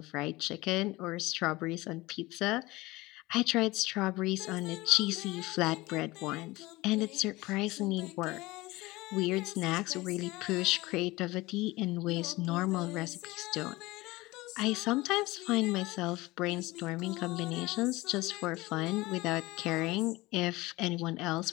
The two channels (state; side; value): quieter; right; 20.7 dB